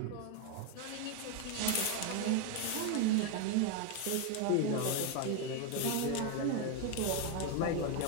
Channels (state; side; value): different; both; correlation 0.02